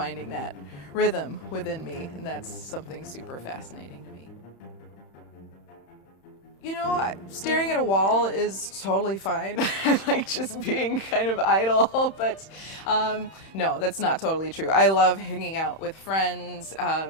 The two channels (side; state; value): right; late; 31 ms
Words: that rhythm within me, and that's something super fascinating to me. You know, staring at a wall is totally fine. I like just being kind of idle, but no, that's not totally true. I love hanging out with friends.